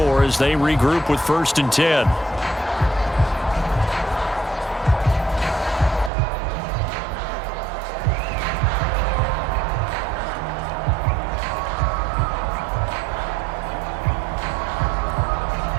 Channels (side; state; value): left; drops out; at 6.1 s